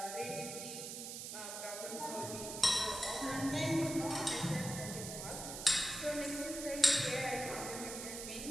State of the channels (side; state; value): right; noise; hiss, 7 dB below the sound